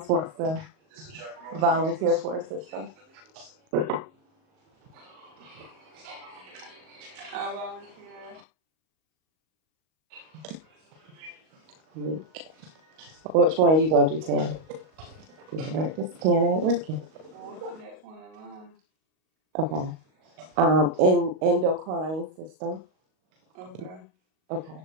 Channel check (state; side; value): late; left; 38 ms